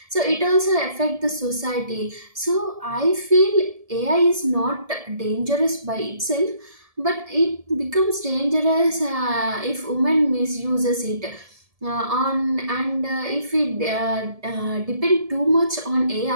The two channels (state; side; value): late; left; 1.7 ms